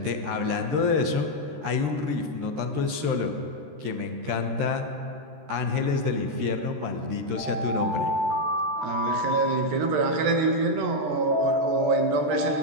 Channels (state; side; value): late; left; 13 ms